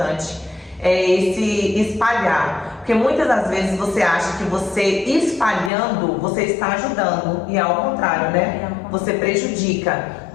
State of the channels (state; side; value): drops out; right; at 5.7 s